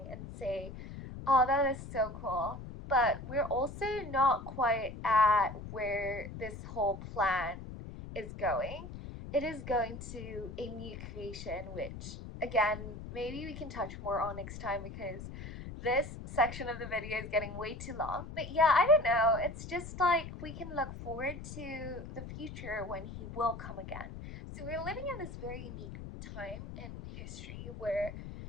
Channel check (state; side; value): noise; left; rumble, 10 dB below the sound